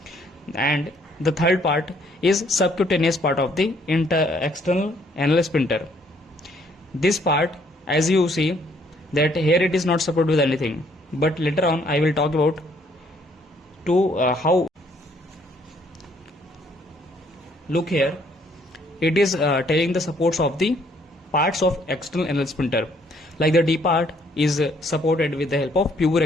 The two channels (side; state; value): both; normal; correlation 0.65